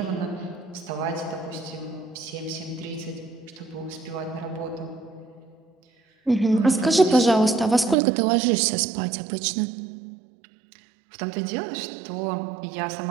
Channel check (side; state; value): left; drops out; at 8.0 s